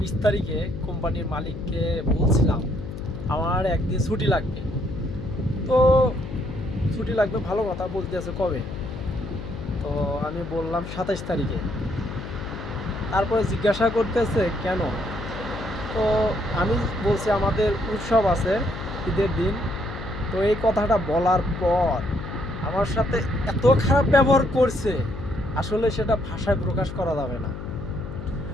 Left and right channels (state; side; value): noise; left; hum, 9 dB below the sound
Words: তারিখে কোম্পানির মালিককে বলছিলাম আমার একদিন ছুটি লাগবে। তো ছুটি লাগবে ভালো কথা, বলতে আছে কবে। তো আমি বললাম 27 তারিখে। তারপরে জিজ্ঞাসা করতেছে কেন। তো আমি বলছি আমাদের উৎসব আছে, ঈদের দিন। তো এই কথাটা বলার পর আমার সাথে এত খারাপ ব্যবহার করছে, আসলে সেটা ভাষায় প্রকাশ করা যাবে না।